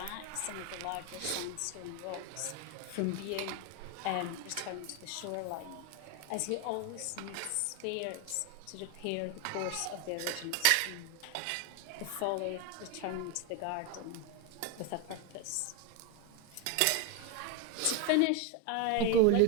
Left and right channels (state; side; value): different; both; correlation 0.01